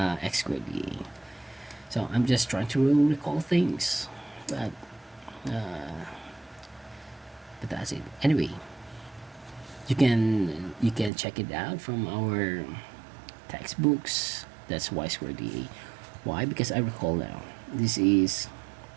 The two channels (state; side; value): drops out; left; at 11.1 s